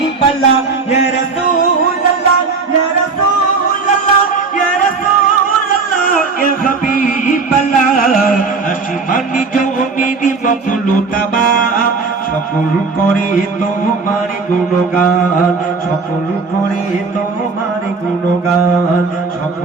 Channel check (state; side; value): quieter; left; 4.4 dB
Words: ইয়া রাসূলুল্লাহ ইয়া রাসূলুল্লাহ ইয়া রাসূলুল্লাহ ইয়া হাবিবাল্লাহ আসমানি জমিনে মখলুকাবা সকল করে তোমার গুণগান সকল করে তোমার গুণগান